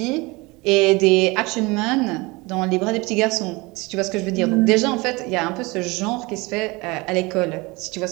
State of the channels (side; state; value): left; quieter; 24.2 dB